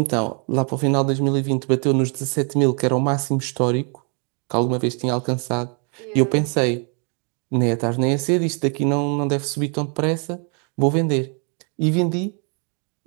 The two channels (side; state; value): left; quieter; 38.8 dB